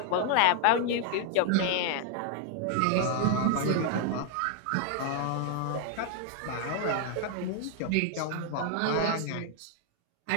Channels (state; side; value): different; both; correlation 0.00